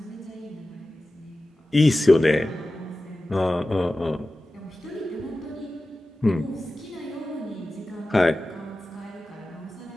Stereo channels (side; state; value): both; normal; correlation 0.95